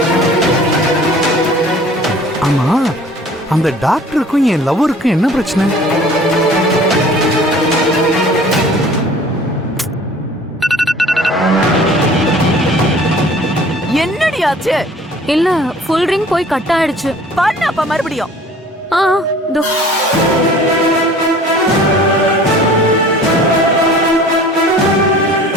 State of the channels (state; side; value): normal; both; correlation 0.48